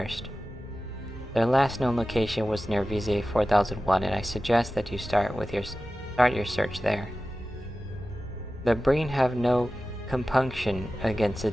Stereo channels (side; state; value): both; normal; correlation 0.95